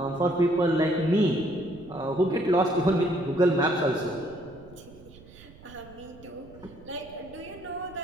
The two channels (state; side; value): noise; right; rumble, 21 dB below the sound